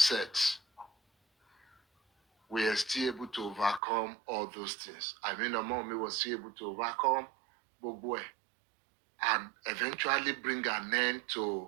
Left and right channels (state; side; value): drops out; left; at 3.8 s